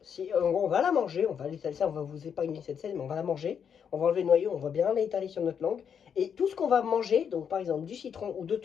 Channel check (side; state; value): right; quieter; 7.5 dB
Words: Si en gros, on va la manger, on va l'étaler ça, on va vous épargner cette scène, mais on va la manger. On va enlever le noyau, on va bien l'étaler sur notre langue. Et tout ce qu'on va manger, donc par exemple du citron ou d'autres